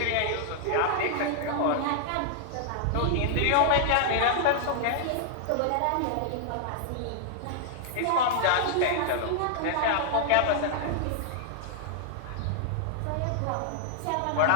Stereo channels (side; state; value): both; different; correlation -0.01